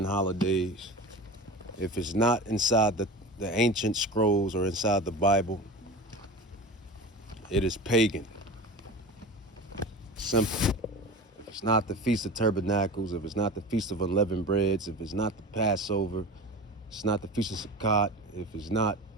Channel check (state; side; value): normal; both; correlation 0.32